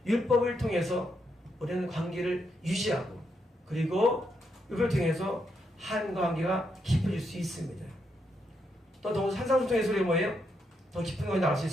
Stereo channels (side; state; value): both; normal; correlation 0.80